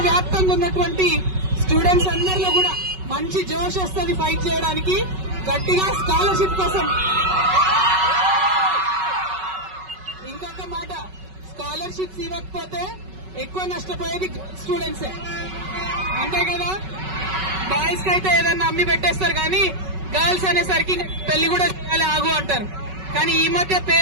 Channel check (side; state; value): left; late; 5.3 ms